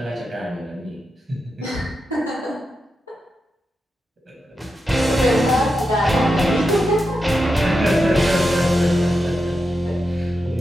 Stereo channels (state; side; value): normal; both; correlation 0.88